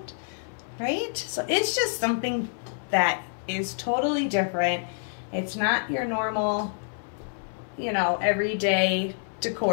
right? So it's just something that is totally different. It's not your normal, you know, everyday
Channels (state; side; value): silent; right; 60 dB below the other